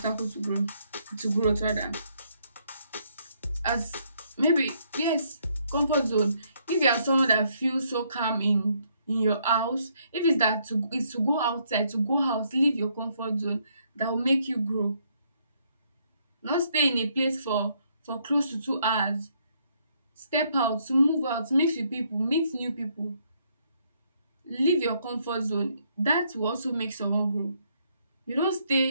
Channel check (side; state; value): both; inverted; correlation -0.71